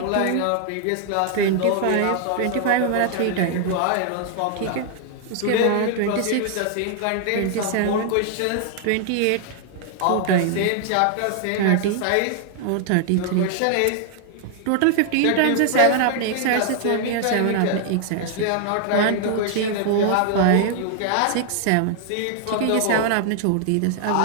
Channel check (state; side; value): different; both; correlation 0.00